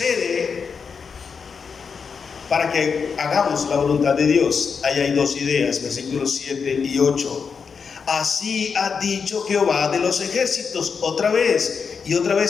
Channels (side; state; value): right; quieter; 5.8 dB